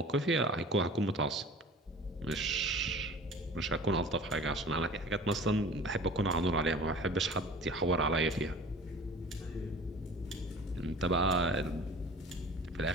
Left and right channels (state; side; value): normal; both; correlation 0.42